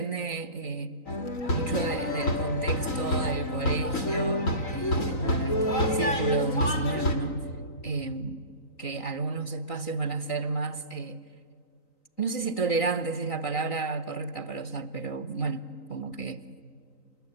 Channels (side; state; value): right; late; 3.9 ms